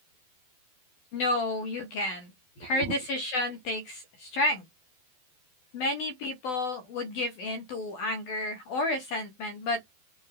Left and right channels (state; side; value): late; right; 12 ms